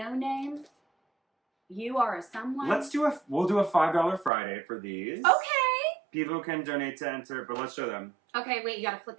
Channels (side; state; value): left; drops out; at 4.3 s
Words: name. You are a someone. We'll do a $5 Friday for these. Okay. People can donate to enter, but let's show them. Okay, wait, you gotta flip